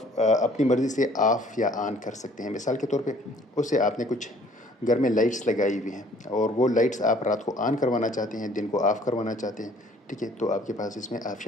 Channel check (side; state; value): both; normal; correlation 0.57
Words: अपनी मर्ज़ी से ऑफ़ या ऑन कर सकते हैं। मिसाल के तौर पे उससे आपने कुछ घर में लाइट्स लगाई हुई हैं, और वो लाइट्स आप रात को ऑन करवाना चाहते हैं, दिन को ऑफ़ करवाना चाहते हैं। ठीक है, तो आपके पास इसमें